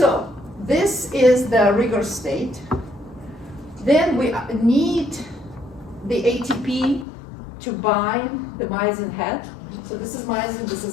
this is the rigor state. Then we need the ATP to bind the myosin head. So this is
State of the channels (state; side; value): drops out; right; at 7.1 s